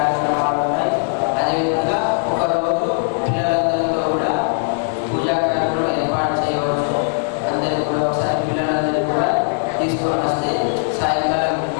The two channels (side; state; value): right; silent; 60 dB below the other